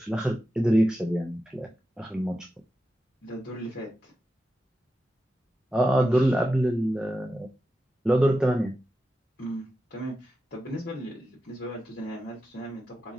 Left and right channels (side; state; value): both; normal; correlation 0.90